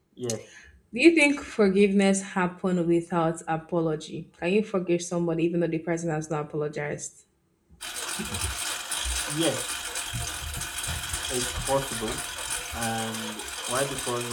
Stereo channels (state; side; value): identical; both; correlation 1.00